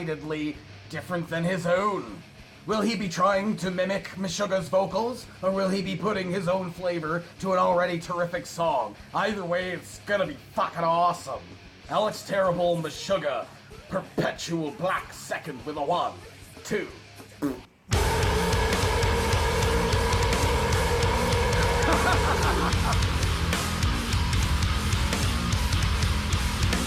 different than his own. Will he be trying to mimic Meshuggah's vocals, or will he be putting his own flavor to an already terrific song? Either way, it's gonna be fucking awesome. Alex Terrible, Meshuggah, Perpetual Black Second with a 1, 2.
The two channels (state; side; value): identical; both; correlation 1.00